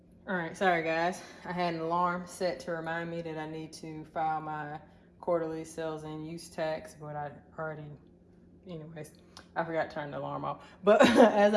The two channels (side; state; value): both; identical; correlation 1.00